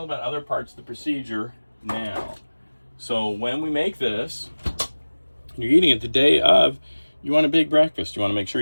about other parts of the procedure now. So when we make this, you're eating it the day of, you want a big breakfast. You want to make sure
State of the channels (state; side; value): inverted; both; correlation -1.00